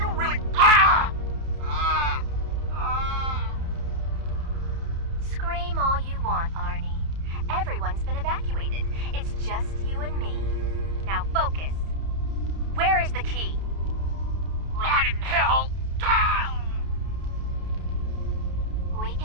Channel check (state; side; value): late; left; 30 ms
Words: really... Ah! Ah! Ah! Scream all you want, Arnie. Everyone's been evacuated. It's just you and me. Now focus. Where is the key? Rot in hell! Ah! We